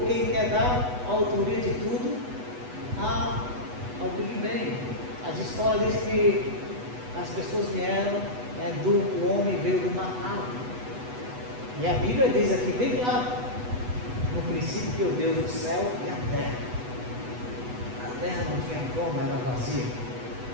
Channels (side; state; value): left; late; 8.1 ms